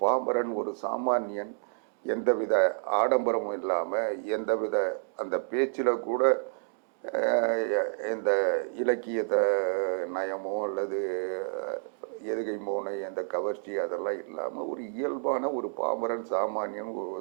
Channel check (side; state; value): left; silent; digital silence